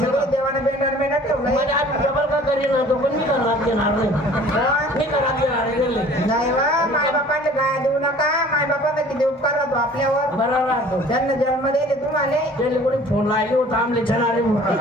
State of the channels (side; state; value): both; normal; correlation 0.49